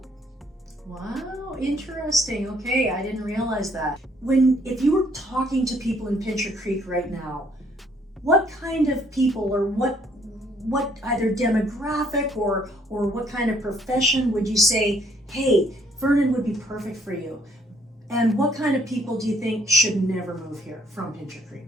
Wow, interesting. Okay, I didn't realize that. If you were talking to people in Pincher Creek right now, what kind of people or what either demographic or what kind of profession would you say, hey, Vernon would be perfect for you? And what kind of people do you think should never move here from Pincher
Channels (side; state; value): both; normal; correlation 0.65